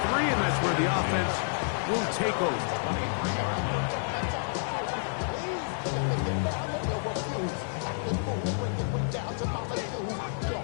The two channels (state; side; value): silent; right; digital silence